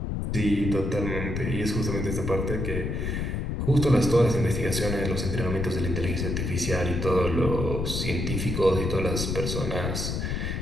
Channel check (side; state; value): left; noise; rumble, 2 dB below the sound